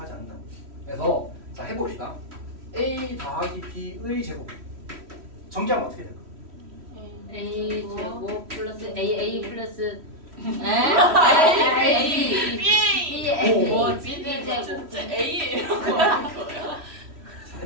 않는다. 그래서 자 해봅시다. a 더하기 b의 제곱 정리하면 어떻게 될까? A 제곱 플러스 A 플러스 A BA! 오. B는 제곱. 진짜 A예요. 하는 거예요. 자,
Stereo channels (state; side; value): late; left; 3.1 ms